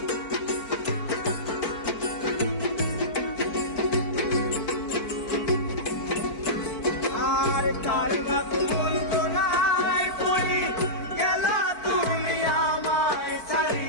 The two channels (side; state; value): right; late; 4.5 ms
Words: কার বাপ বলতো নাই পড়ি গেলা তুমি আমায় ছাড়ি,